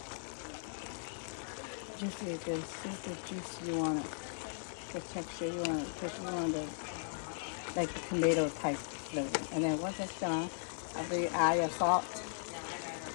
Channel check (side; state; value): right; silent; digital silence